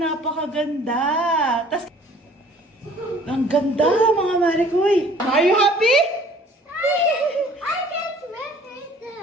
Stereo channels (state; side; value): normal; both; correlation 0.53